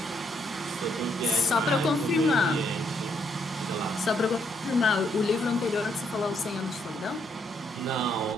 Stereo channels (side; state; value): both; normal; correlation 0.74